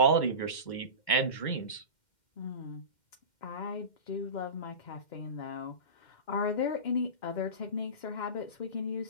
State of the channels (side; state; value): right; late; 2.1 ms